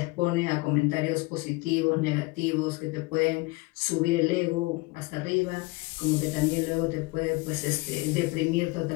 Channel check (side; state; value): right; quieter; 24.2 dB